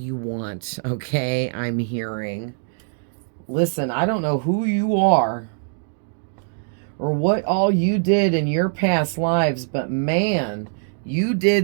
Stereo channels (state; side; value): silent; left; digital silence